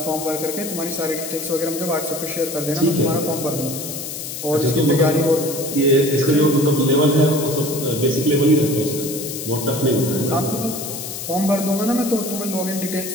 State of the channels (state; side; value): noise; left; hiss, 7 dB below the sound